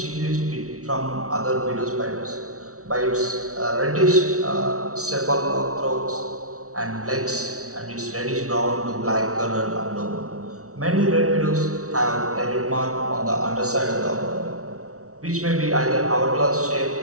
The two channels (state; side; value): late; left; 0.65 ms